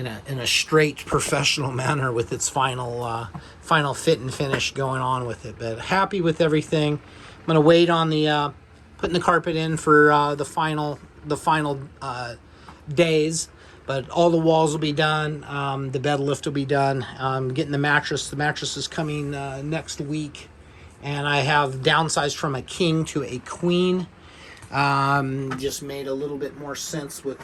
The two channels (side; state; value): both; identical; correlation 1.00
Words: straight professional manner with its final fit and finish going on with it. But happy with everything. I'm going to wait on the putting the carpet in for the final days, but all the walls will be done. The bed lift will be done. Getting the mattress is coming next week, and I have downsized from a king to a queen. Just made a little bit more sense with